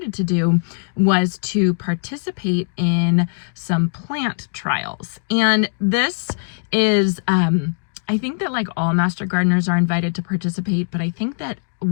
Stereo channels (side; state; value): right; silent; digital silence